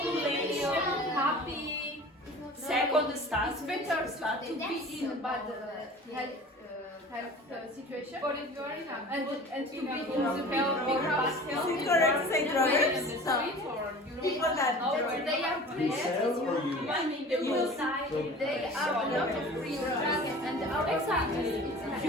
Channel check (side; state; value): both; normal; correlation 0.41